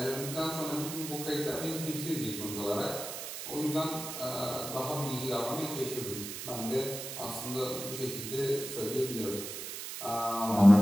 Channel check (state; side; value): noise; right; hiss, 7 dB below the sound